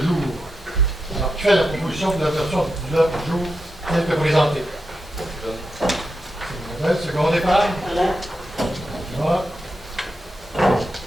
Alors, qui fait la proposition de l'adoption de l'ordre du jour tel que présenté? C'est second départ. Voilà.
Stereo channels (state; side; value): normal; both; correlation 0.87